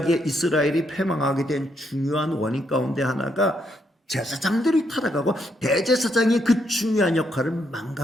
이스라엘이 패망하게 된 중요한 원인 가운데 하나가 제사장들이 타락하고 대제사장이 그 중요한 역할을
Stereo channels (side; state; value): both; normal; correlation 0.76